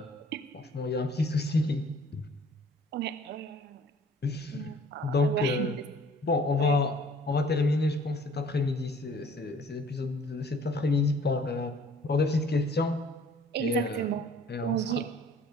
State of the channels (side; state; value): both; normal; correlation 0.54